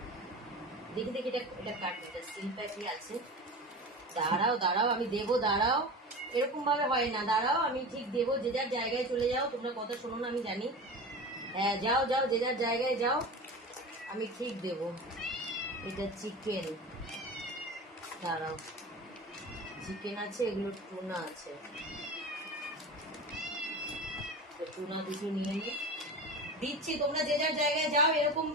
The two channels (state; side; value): normal; both; correlation 0.30